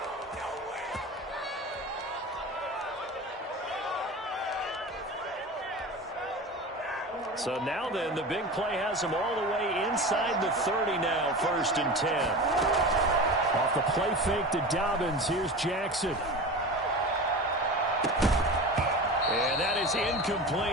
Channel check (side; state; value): both; normal; correlation 0.31